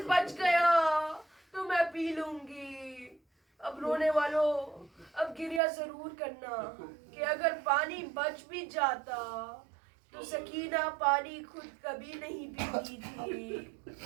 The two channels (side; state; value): left; drops out; at 5.6 s